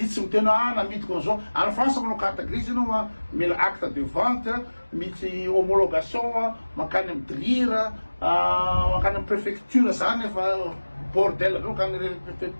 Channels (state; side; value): inverted; both; correlation -1.00